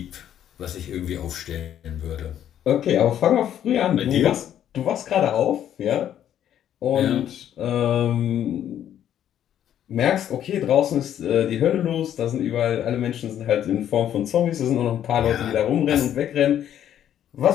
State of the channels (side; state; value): right; quieter; 10.5 dB